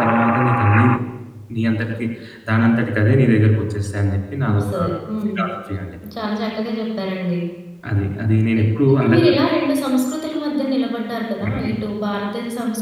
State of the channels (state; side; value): identical; both; correlation 1.00